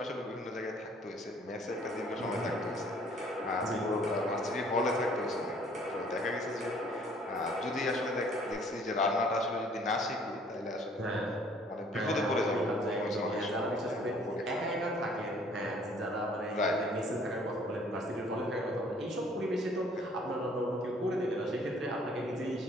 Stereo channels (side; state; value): both; normal; correlation 0.58